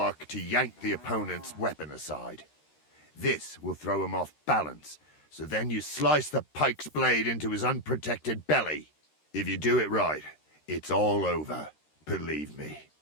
to yank the opponent's weapon aside. This will throw him off balance, so then you slice the pike's blade into his unprotected belly. If you do it right, it's all over, believe me.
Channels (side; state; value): right; late; 13 ms